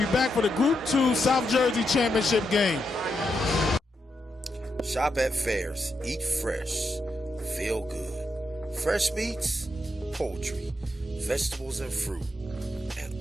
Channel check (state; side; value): normal; both; correlation 0.83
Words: back for the Group 2 South Jersey Championship game. Shop at Fairs. Eat fresh. Feel good. Fresh meats, poultry, vegetables and fruit, and